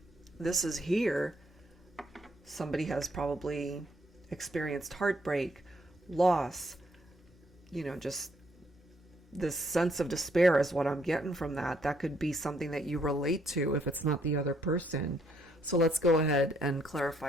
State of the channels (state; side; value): normal; both; correlation 0.70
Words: this is here. Somebody has probably experienced heartbreak, loss, you know, just this sense of despair is what I'm getting from that. That could be something that you relate to if it's not the other person. So let's go ahead and